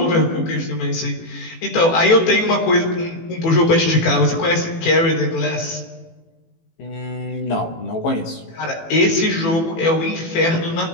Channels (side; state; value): right; late; 18 ms